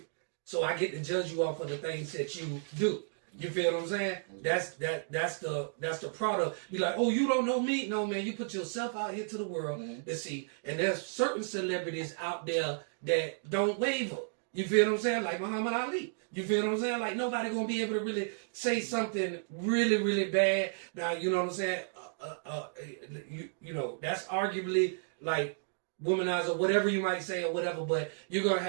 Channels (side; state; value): left; silent; digital silence